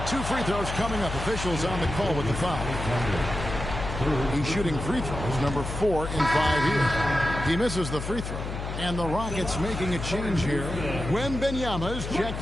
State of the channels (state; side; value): noise; left; hum, 6 dB below the sound